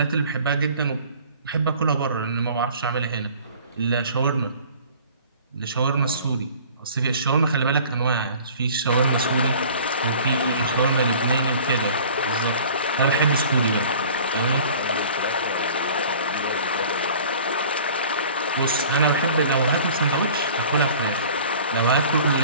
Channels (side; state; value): both; inverted; correlation -0.47